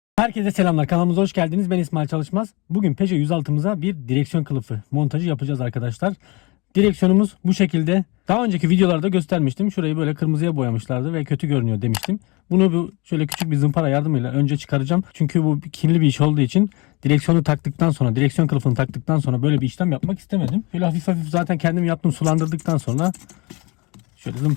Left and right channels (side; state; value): right; quieter; 26.8 dB